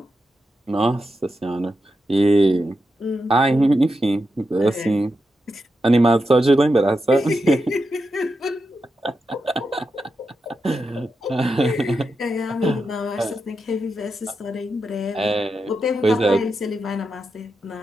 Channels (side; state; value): both; normal; correlation 0.87